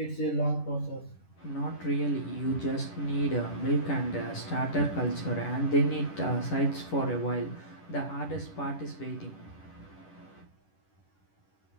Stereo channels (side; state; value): right; late; 10 ms